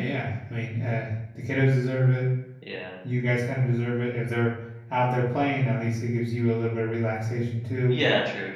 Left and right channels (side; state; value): both; identical; correlation 1.00